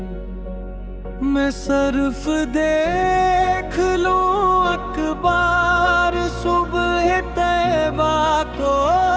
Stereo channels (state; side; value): identical; both; correlation 1.00